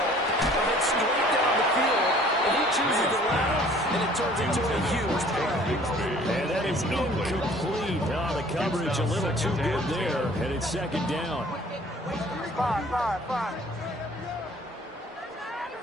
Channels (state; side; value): normal; both; correlation 0.53